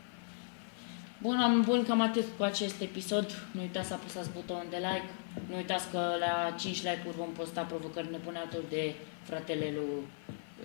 Bun, oameni buni, cam atât cu acest episod. Nu uitați să apăsați butonul de like. Nu uitați că la 5 like-uri vom posta provocări nebune alături de fratele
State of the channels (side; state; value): right; silent; 54 dB below the other